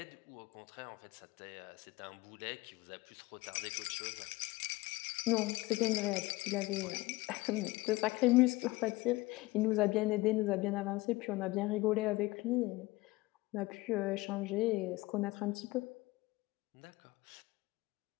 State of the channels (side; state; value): right; quieter; 21.0 dB